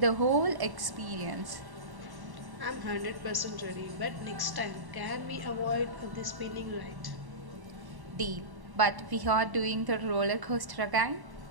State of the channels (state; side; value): late; left; 1.1 ms